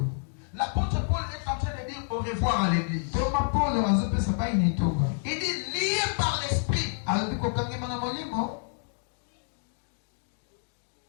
L'apôtre Paul est en train de dire au revoir à l'église. Il dit lié par l'esprit.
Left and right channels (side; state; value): right; silent; digital silence